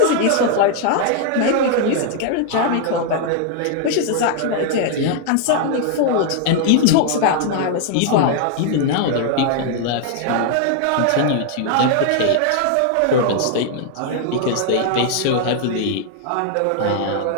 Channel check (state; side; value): different; both; correlation 0.00